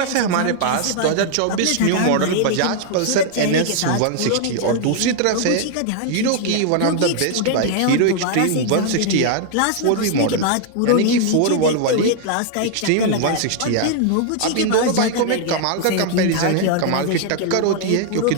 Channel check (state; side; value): different; both; correlation 0.00